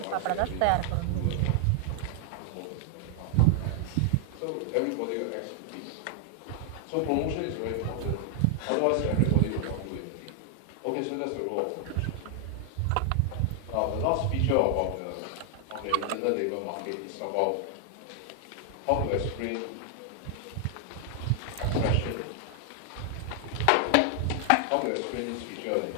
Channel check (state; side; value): different; both; correlation 0.00